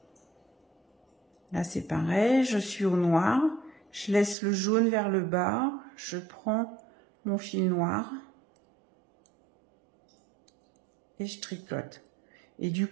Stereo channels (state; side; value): drops out; left; at 4.4 s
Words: Là, c'est pareil. Je suis au noir. Je laisse le jaune vers le bas. Je prends mon fil noir. Et je tricote. Et du